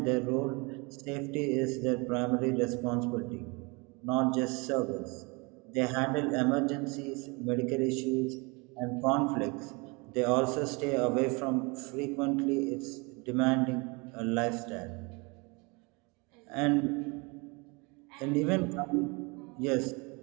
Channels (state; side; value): quieter; left; 28.6 dB